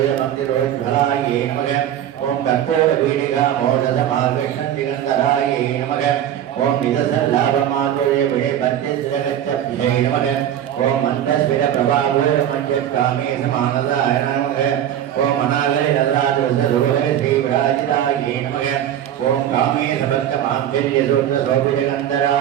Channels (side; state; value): left; quieter; 10.8 dB